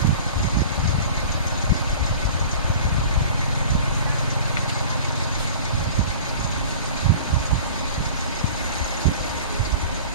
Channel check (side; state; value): both; inverted; correlation -0.41